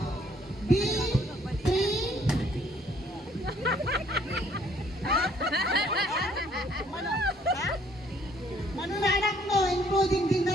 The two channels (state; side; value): normal; both; correlation 0.63